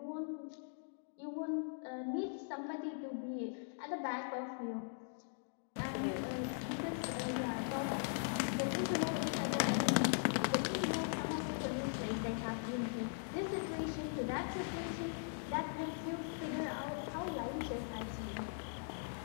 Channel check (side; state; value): right; silent; digital silence